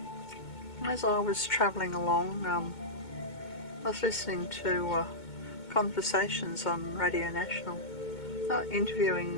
As I was travelling along, I was listening to conversations on Radio National, interviewing,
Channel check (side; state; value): right; late; 2.2 ms